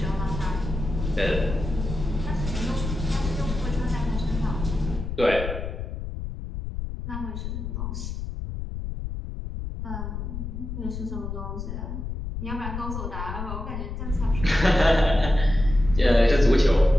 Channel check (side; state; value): left; noise; rumble, 6 dB below the sound